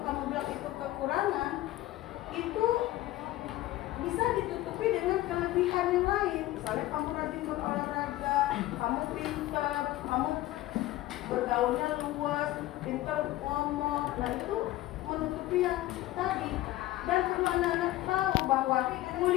kamu bilang itu kekurangan, itu bisa ditutupi dengan kelebihan yang lain. Misalnya kamu rajin berolahraga, kamu pintar, kamu bergaulnya luas, pintar ngomong. Nah itu menutupi yang tadi. Dan perlu anak-anak tahu bahwa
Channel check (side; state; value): right; quieter; 16.2 dB